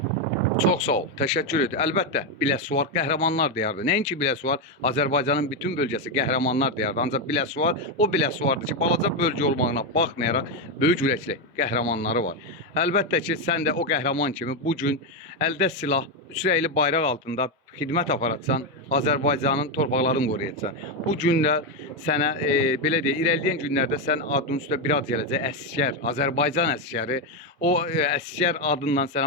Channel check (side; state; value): both; normal; correlation 0.07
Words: Çox sağ ol, təşəkkür edir. Əlbəttə, Biləsuvar qəhrəmanlar diyardır. Nəinki Biləsuvar, Azərbaycanın bütün bölgəsi qəhrəmanlar diyardır. Ancaq Biləsuvar o Biləsuvardır ki, balaca bölgə olmağına baxmayaraq böyük ürəkli qəhrəmanları var. Əlbəttə ki, sən də o qəhrəman kimi bu gün əldə silah, üç rəngli bayraq altında xidmət aparatsan, Azərbaycanın torpaqlarını qoruyacaqsan. Bu günlər sənə, belə deyək, irəliləyən günlərdə sən adının üstə bir ad gələcək, əsgər, Azərbaycan əsgəri. O əsgər adından